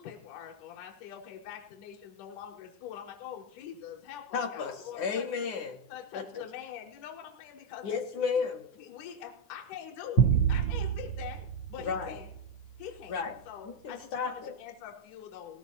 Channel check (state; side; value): late; right; 9.9 ms